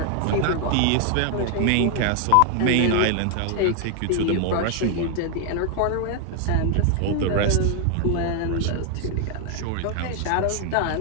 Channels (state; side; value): different; both; correlation 0.00